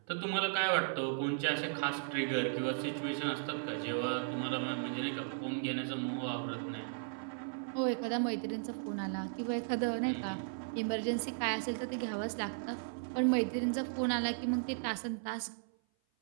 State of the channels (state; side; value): silent; left; 54 dB below the other